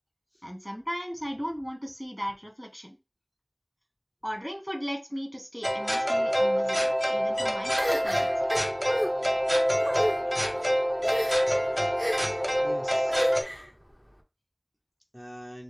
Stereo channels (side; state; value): both; identical; correlation 1.00